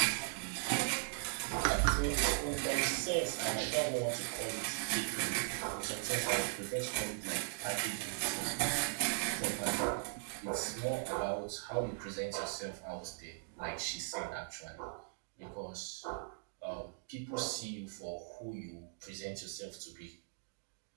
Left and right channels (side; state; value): left; silent; digital silence